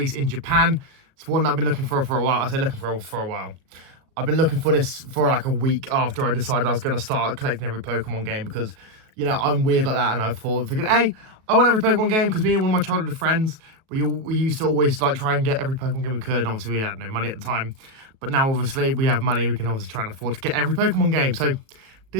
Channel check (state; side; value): late; left; 37 ms